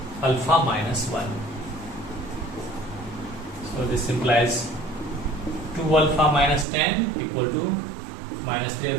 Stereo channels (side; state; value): left; drops out; at 6.7 s